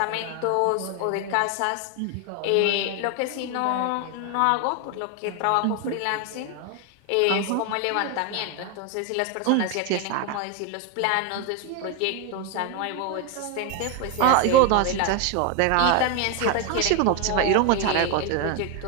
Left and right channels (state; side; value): different; both; correlation 0.01